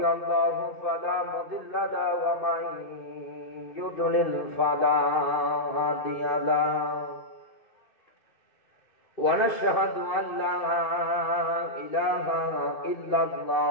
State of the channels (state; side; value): late; right; 2.6 ms